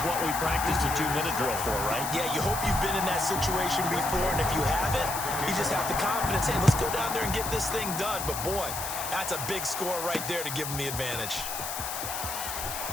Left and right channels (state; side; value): noise; left; hiss, 6 dB below the sound